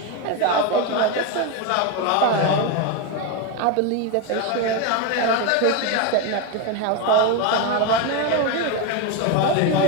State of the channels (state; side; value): different; both; correlation 0.02